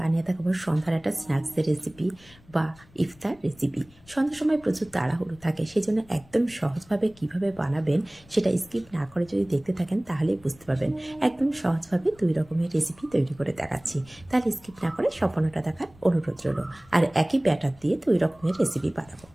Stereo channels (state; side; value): noise; left; rumble, 26 dB below the sound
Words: দেখাবো সন্ধ্যার একটা স্ন্যাক্সের রেসিপি বা ইফতার রেসিপি। সন্ধ্যার সময় প্রচুর তাড়াহুড়ো থাকে, সেই জন্য একদম সহজভাবে কিভাবে বানাবেন সেটা স্কিপ না করে যদি দেখতে থাকেন তাহলেই বুঝতে পারবেন। একদম সহজভাবে 2 রকমের রেসিপি তৈরি করে দেখাচ্ছি, তাহলে স্কিপ না করে সম্পূর্ণটা দেখার অনুরোধ রইল। আর একই ব্যাটার দিয়ে 2 রকমের রেসিপি বানাবো।